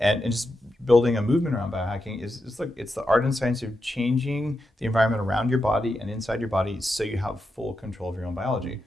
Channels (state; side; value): normal; both; correlation 0.87